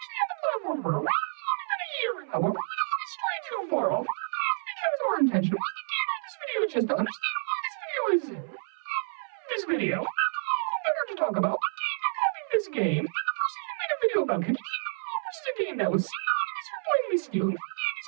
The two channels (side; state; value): left; silent; 58 dB below the other